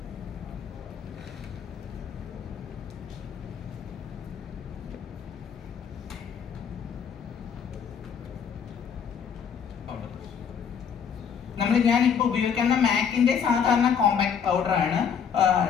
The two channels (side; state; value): right; quieter; 7.2 dB